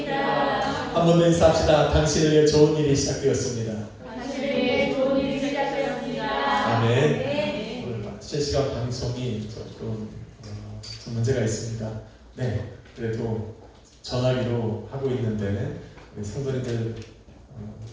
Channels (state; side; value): identical; both; correlation 1.00